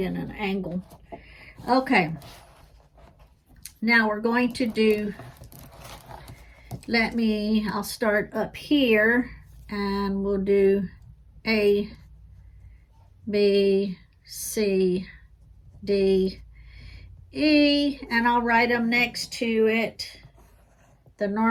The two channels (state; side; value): identical; both; correlation 1.00